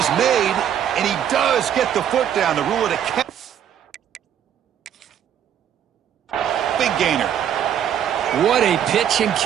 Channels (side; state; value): left; quieter; 9.6 dB